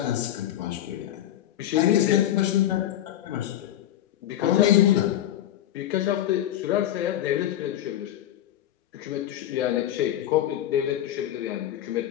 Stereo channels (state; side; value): quieter; right; 12.2 dB